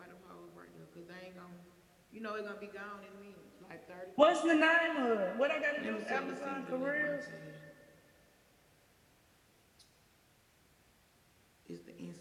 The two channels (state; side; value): identical; both; correlation 1.00